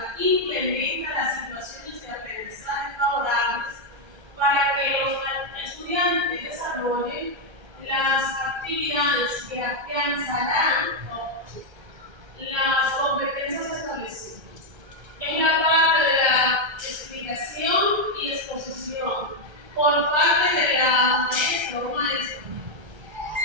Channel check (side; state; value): left; late; 1.3 ms